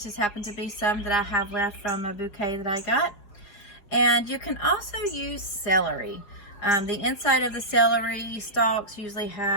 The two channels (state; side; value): late; right; 5.0 ms